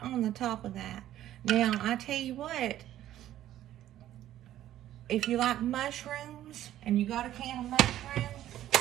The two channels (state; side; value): quieter; left; 12.7 dB